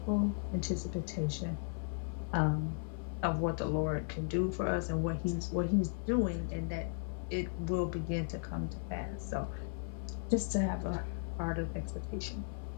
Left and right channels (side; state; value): right; silent; 54 dB below the other